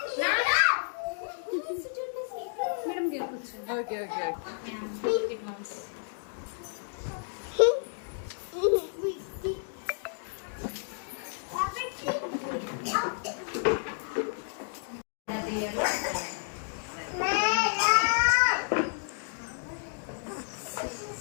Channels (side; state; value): right; silent; digital silence